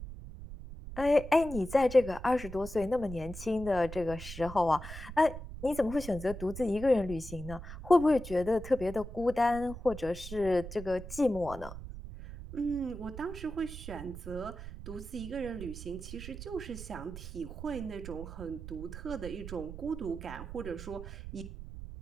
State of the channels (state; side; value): noise; right; rumble, 10 dB below the sound